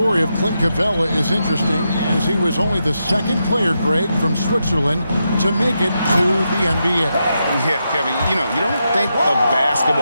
of Clint Capella is interesting, as he was only the second player, Greg, from Switzerland to make it to the NBA. Yeah, Kevin, you don't think of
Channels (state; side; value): inverted; both; correlation -0.85